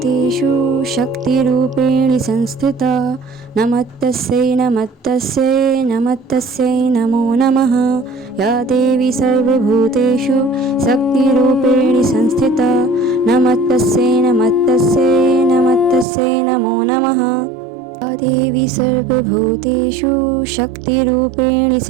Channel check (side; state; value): left; drops out; at 16.1 s